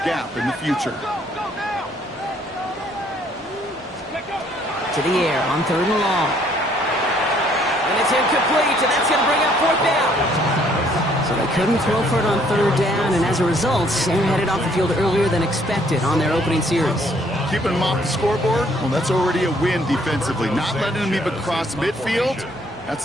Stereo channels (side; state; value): both; normal; correlation 0.64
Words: gap in the future. To the air on 3rd and long. And it's incomplete, and that's going to bring up 4th down. So they couldn't throw for it on 3rd down, and as a result, they're headed off the field earlier than expected on their opening series. Keeping them off the scoreboard, well, that's already a win defensively. Not letting them even cross midfield,